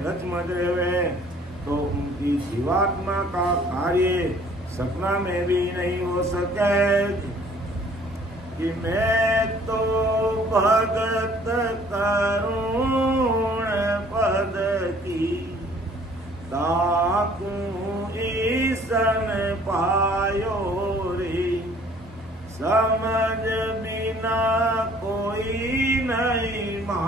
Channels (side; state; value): both; normal; correlation 0.56